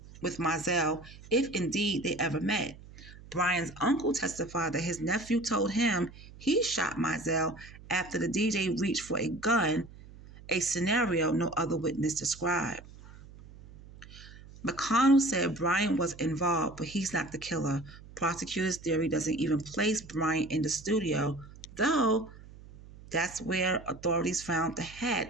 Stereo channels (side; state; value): right; noise; hum, 19 dB below the sound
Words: with Mizell, if indeed they ever met. Bryant's uncle testified that his nephew told him he shot Mizell after the DJ reached for a gun, a scenario no other witness described. McConnell said Bryant was involved, but he's not the killer. Prosecutors' theory doesn't even place Bryant in the studio, though that's where authorities found the